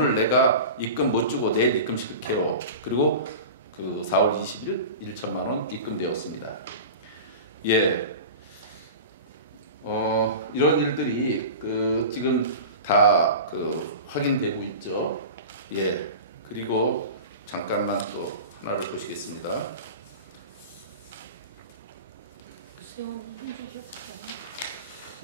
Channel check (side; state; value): both; inverted; correlation -0.33